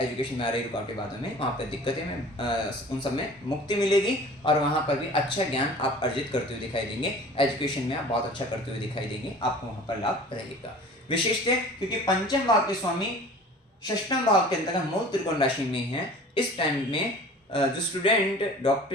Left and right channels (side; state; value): both; normal; correlation 0.44